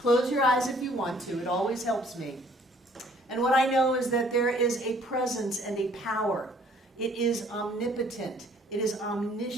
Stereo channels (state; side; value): normal; both; correlation 0.59